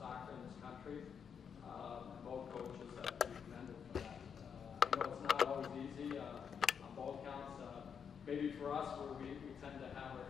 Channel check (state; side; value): quieter; right; 7.1 dB